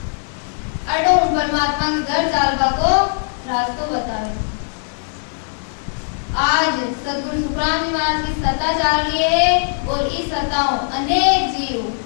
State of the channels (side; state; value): right; silent; 66 dB below the other